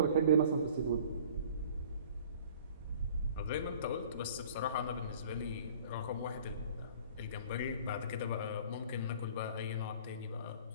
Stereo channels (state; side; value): inverted; both; correlation -0.49